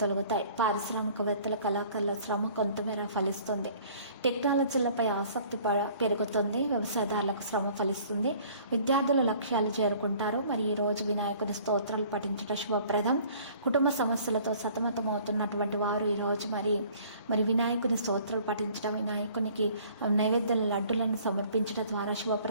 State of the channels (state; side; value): inverted; both; correlation -0.53